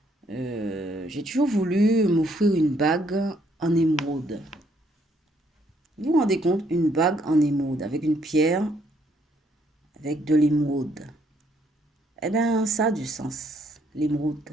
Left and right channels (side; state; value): both; normal; correlation 0.69